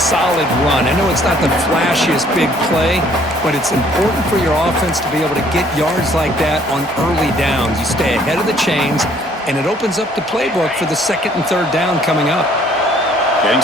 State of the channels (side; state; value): both; normal; correlation 0.61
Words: run. I know it's not the flashiest big play, but it's important for your offense to be able to get yards like that on early downs. You stay ahead of the chains, and it opens up the playbook for the second and third down coming up. Getting